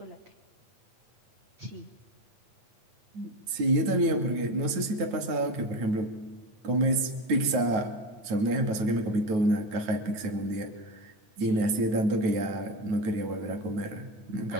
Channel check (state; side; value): late; left; 9.3 ms